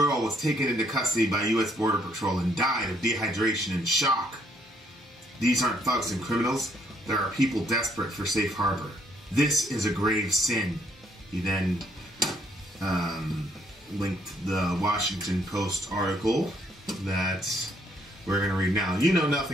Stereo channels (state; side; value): normal; both; correlation 0.69